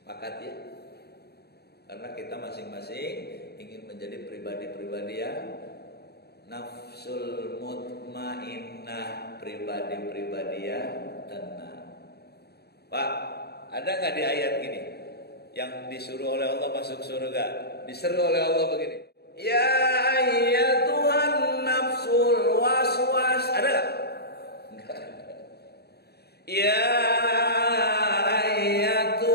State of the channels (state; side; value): late; right; 0.47 ms